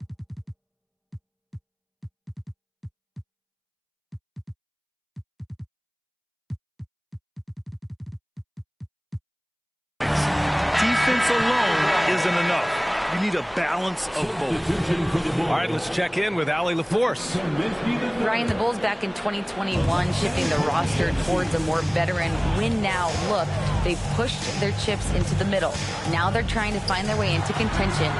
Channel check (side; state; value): both; identical; correlation 1.00